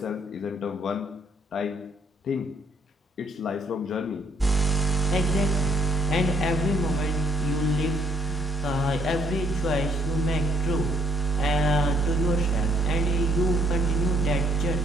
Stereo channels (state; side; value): normal; both; correlation 0.68